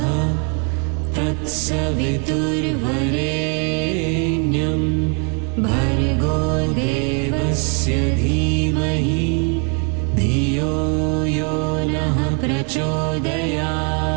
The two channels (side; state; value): left; quieter; 37.4 dB